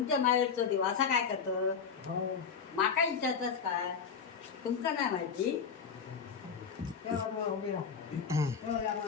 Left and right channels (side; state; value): right; quieter; 6.3 dB